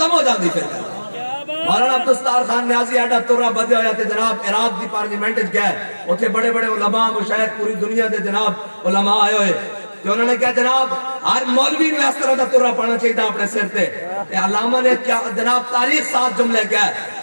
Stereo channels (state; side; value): inverted; both; correlation -1.00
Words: ہو جاندی پھر. مولانا عبدالستار خان نیازی ایڈا ترہ بدے ہویا تھے جناب عراق دی پارلیمنٹ گئے اتھے بڑے بڑے علماء مشاہد پوری دنیا دے جناب علماء آئے ہوئے کہ انہوں نے کہا جناب ہر مولوی میں اس طرح دا ترہ پڑھنا چاہیے اپنے سر تے. علامہ نے جناب تاریخ 7 جملے کہا